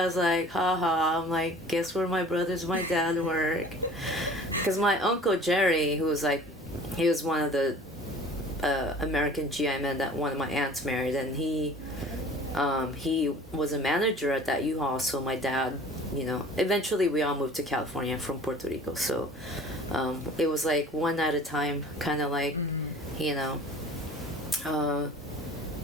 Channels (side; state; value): both; normal; correlation 0.45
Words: was like, haha. I'm like, guess where my brothers, my dad work. Because my uncle Jerry, who was like, he was one of the American GI men that one of my aunts married, and he was a manager at that U-Haul. So my dad, you know, eventually we all moved to California from Puerto Rico. So it was like one at a time, kind of like, you know.